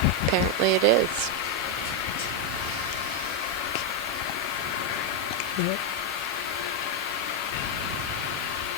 apparently it is.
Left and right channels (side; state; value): both; normal; correlation 0.02